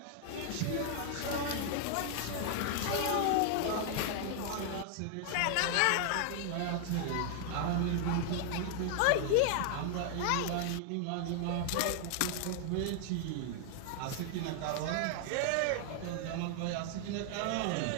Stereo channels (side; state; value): both; different; correlation 0.00